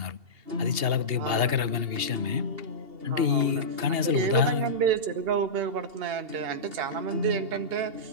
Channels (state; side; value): late; left; 2.8 ms